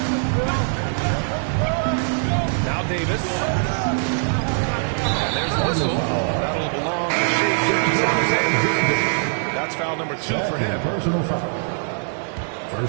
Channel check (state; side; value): silent; left; 64 dB below the other